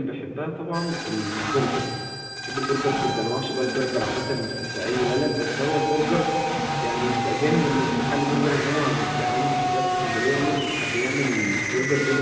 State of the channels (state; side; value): identical; both; correlation 1.00